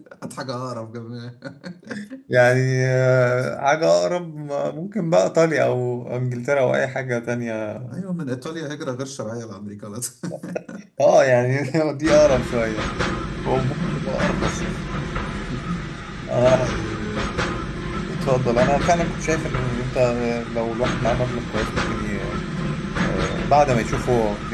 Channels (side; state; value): both; identical; correlation 1.00